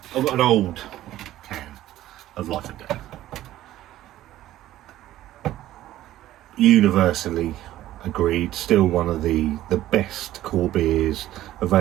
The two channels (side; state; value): left; quieter; 14.1 dB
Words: I've got an old can of Life and Death. Universally agreed, still one of the best core beers